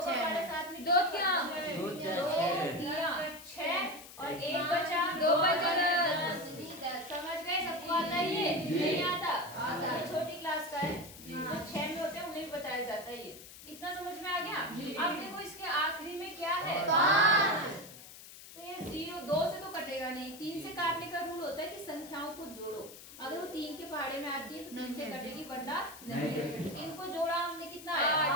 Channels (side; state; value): left; noise; hiss, 16 dB below the sound